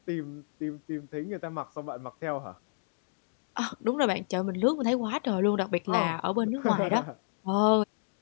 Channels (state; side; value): silent; right; digital silence